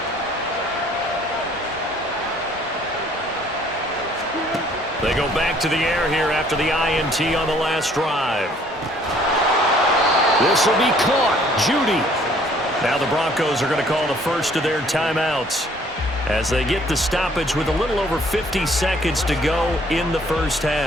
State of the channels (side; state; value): both; normal; correlation 0.59